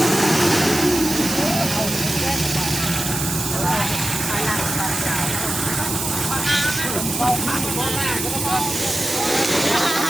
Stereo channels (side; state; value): right; noise; hiss, 4 dB below the sound